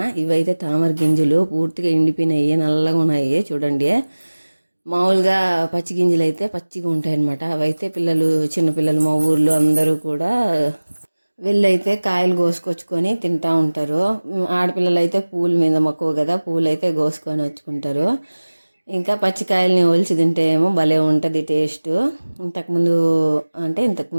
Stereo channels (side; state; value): both; inverted; correlation -1.00